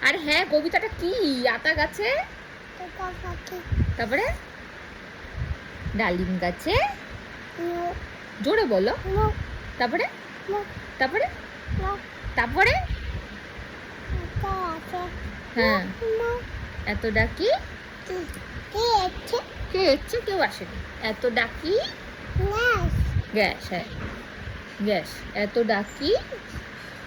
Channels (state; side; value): identical; both; correlation 1.00